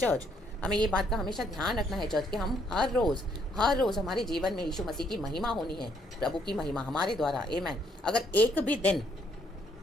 हमें ये बात का हमेशा ध्यान रखना है चर्च कि हम हर रोज़ हमारे जीवन में यीशु मसीह की महिमा होनी है, प्रभु की महिमा हमारे द्वारा। आमेन। अगर एक भी दिन,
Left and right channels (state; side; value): normal; both; correlation 0.69